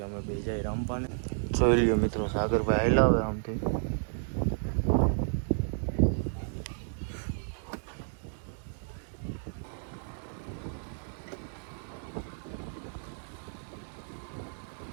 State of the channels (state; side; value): silent; left; digital silence